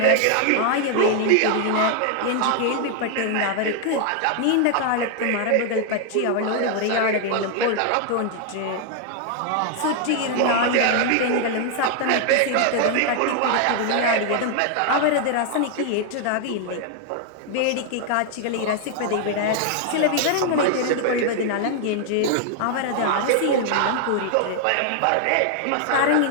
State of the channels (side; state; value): both; different; correlation 0.00